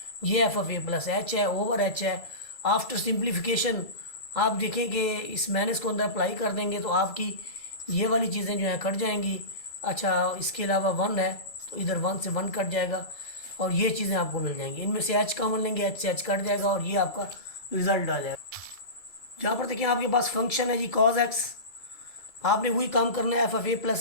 ये F of A plus H है, ओवर एच है। आफ्टर सिंप्लीफिकेशन आप देखें कि इस माइनस को अंदर अप्लाई कर देंगे तो आपकी ये वाली चीज़ें जो हैं कट जाएंगी। अच्छा, इसके अलावा 1 है तो इधर 1 से 1 कट जाएगा और ये चीज़ें आपको मिल जाएंगी। इनमें से एच कॉमन लेंगे, एच से एच कट जाएगा और ये आपका रिजल्ट आ जाएगा। जहाँ पर देखिए आपके पास फंक्शन है जी कॉज एक्स, आपने वही काम करना है F of A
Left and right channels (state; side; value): late; right; 2.3 ms